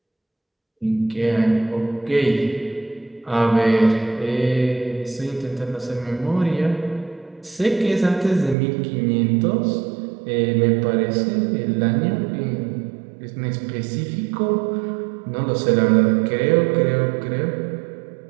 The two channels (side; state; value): left; drops out; at 8.6 s